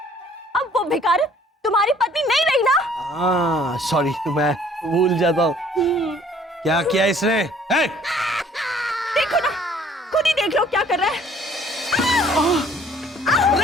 अब वो भिखारी तुम्हारी पत्नी नहीं रही ना? हाँ सॉरी, मैं भूल जाता हूँ। क्या किया इसने? है? देखो ना, खुद ही देख लो क्या कर रहा है।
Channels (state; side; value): normal; both; correlation 0.57